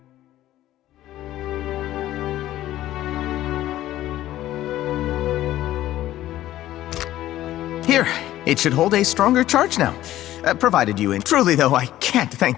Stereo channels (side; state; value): right; quieter; 14.1 dB